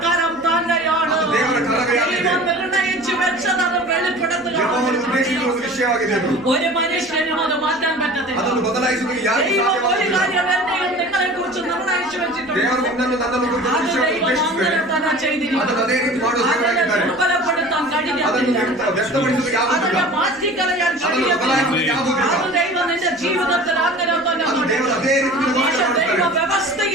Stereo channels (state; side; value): noise; right; rumble, 28 dB below the sound